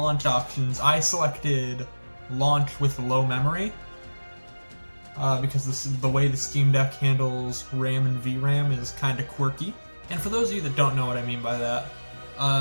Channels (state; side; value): inverted; both; correlation -1.00